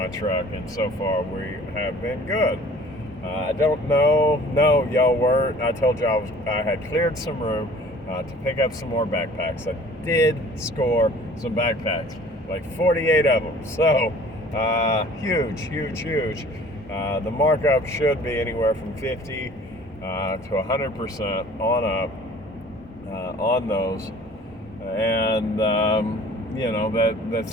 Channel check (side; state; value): both; normal; correlation 0.50